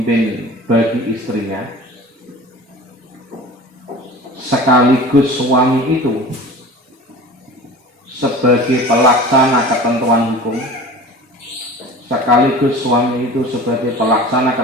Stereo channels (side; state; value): both; normal; correlation 0.38